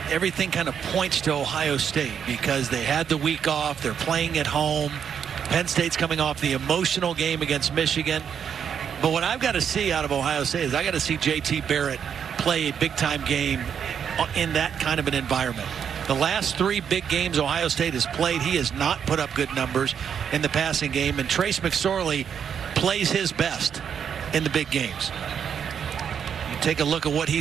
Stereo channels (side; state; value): left; quieter; 7.8 dB